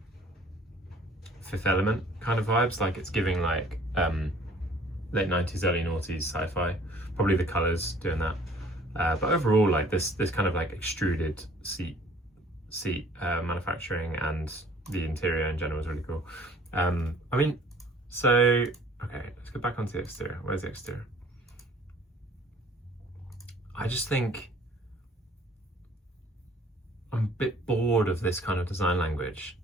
Fifth Element kind of vibes. Like, it's giving like late 90s, early noughties sci-fi. Probably the colours doing that. But overall, like this kind of like extruded seat manufacturing, and the interior in general is really cool. I mean, so okay, let's go back onto the exterior. Where's the exterior? I just think I'm a bit bored of this kind of design language.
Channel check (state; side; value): normal; both; correlation 0.54